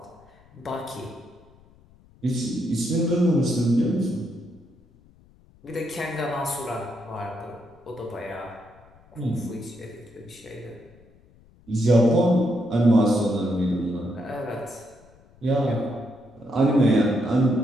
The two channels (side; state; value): left; noise; rumble, 28 dB below the sound